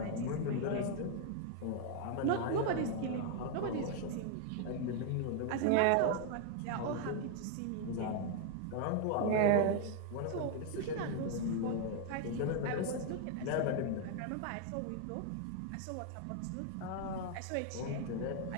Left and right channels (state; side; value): different; both; correlation 0.00